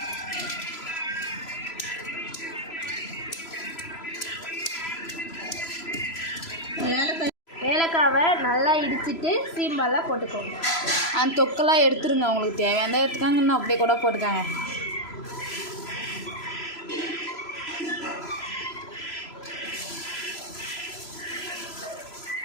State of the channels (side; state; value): right; late; 3.0 ms